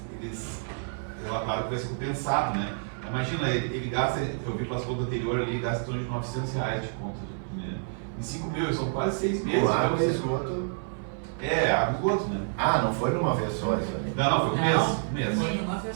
relataram que vai ser compensado, né? Imagina, ele gasta, eu vi pelas contas anteriores ali, gasta em torno de R$900 de conta de dinheiro. Em 5 mil, são quase 6 meses. Com água e esgoto. Água e esgoto, né? Ah, não foi numa vez só isso aí? Não, foi um mês. Foi uma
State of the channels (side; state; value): left; silent; 56 dB below the other